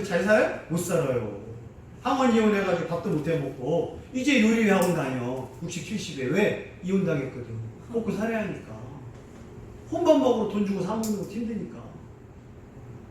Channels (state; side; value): identical; both; correlation 1.00